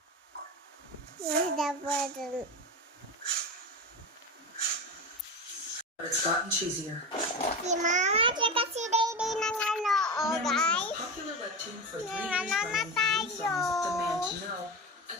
Dapat It's gotten cheesier. si mama tsaka si Dede nang guys. Popular webtoon for 3 Nang years na running tayo. Demand to Know, a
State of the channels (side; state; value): both; normal; correlation 0.23